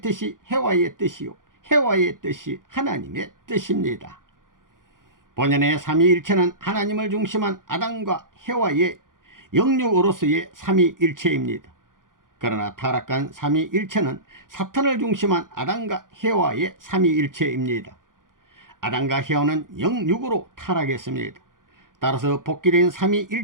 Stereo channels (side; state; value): left; late; 0.90 ms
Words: 뜻이 해와의 뜻이요, 해와의 뜻이 하나님의 뜻입니다. 본연의 삼위일체는 하나님을 중심한 아담과 해와의 영육으로서의 삼위일체입니다. 그러나 타락한 삼위일체는 사탄을 중심한 아담과 해와의 삼위일체입니다. 아담과 해와는 영육으로 타락했습니다. 따라서 복귀된